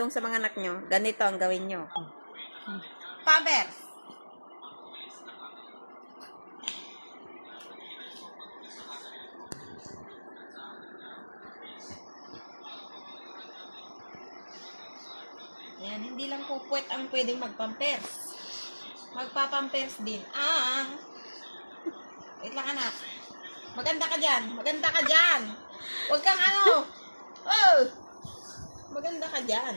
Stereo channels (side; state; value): both; inverted; correlation -1.00